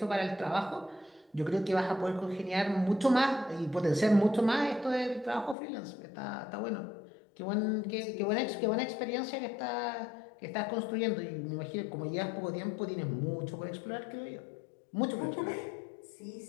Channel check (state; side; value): drops out; right; at 5.6 s